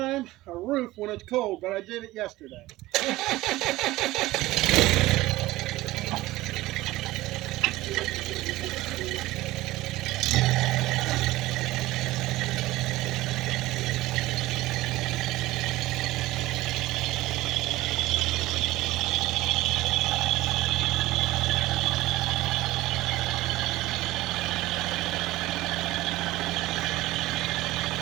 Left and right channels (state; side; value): quieter; left; 17.8 dB